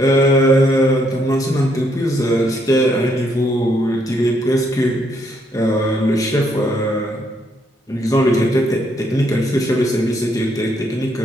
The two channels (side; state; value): both; normal; correlation 0.72